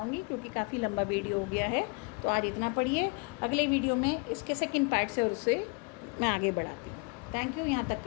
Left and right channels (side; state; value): right; quieter; 31.4 dB